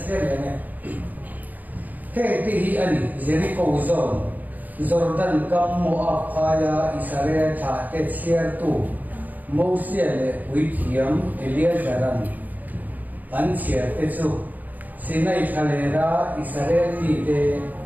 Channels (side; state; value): left; late; 0.082 ms